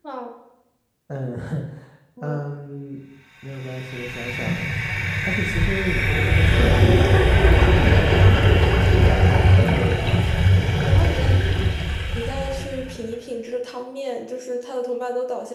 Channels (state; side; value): identical; both; correlation 1.00